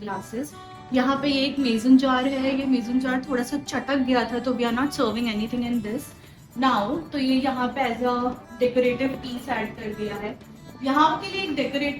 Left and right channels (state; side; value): identical; both; correlation 1.00